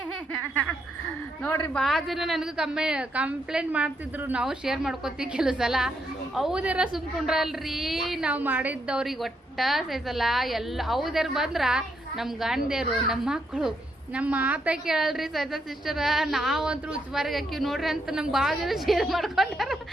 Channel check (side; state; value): both; normal; correlation 0.78